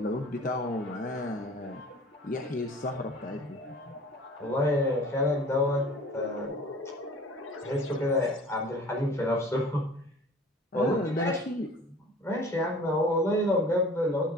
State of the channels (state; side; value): normal; both; correlation 0.45